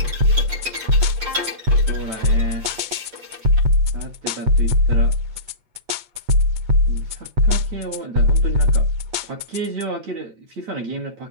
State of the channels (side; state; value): left; late; 8.7 ms